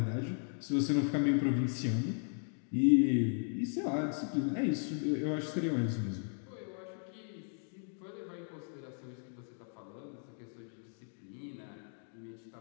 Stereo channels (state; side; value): silent; right; 54 dB below the other